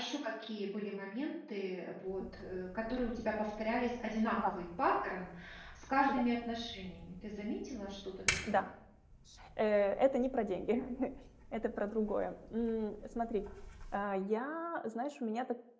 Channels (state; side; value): identical; both; correlation 1.00